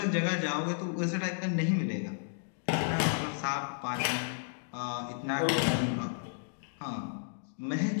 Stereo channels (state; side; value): silent; right; digital silence